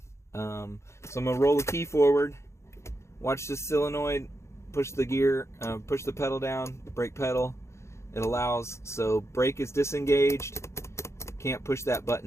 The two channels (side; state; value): right; late; 0.13 ms